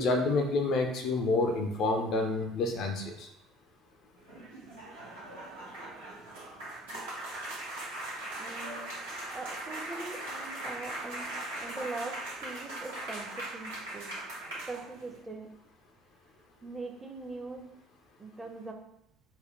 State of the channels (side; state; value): both; normal; correlation 0.51